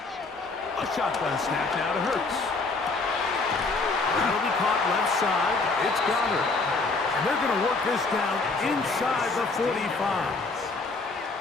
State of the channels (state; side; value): quieter; right; 3.8 dB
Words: A shotgun snap now to Hurts. That'll be caught left side. It's Goddard. And they're going to work this down inside the 45.